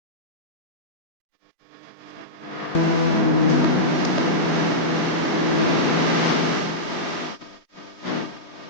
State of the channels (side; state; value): right; late; 3.2 ms